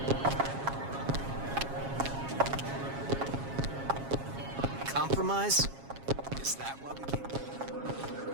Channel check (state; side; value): late; left; 7.3 ms